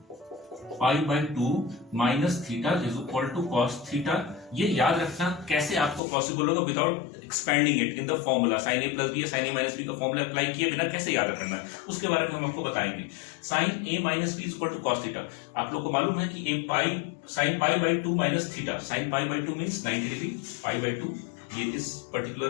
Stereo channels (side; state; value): right; drops out; at 6.0 s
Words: pi by 2 minus theta is equal to cos theta, ये याद रखना कैसे आपको पॉसिबल होगा without expanding it in the formula. Sine A plus B या साइन ए माइनस बी का फॉर्मूला अप्लाई किए बिना कैसे याद रखना है उसके बारे में हम आपको बताएंगे। Sine A minus B is equal to cos theta, आप लोग को मालूम है कि ए pi sine pi by 2 minus theta, sine pi by 2 means 90 degree, pi by 2 ये इस